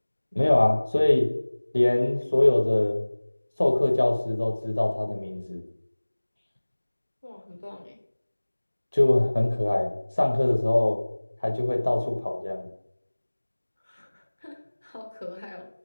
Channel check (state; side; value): inverted; both; correlation -1.00